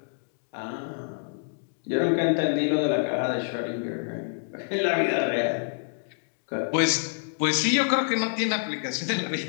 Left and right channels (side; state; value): right; silent; digital silence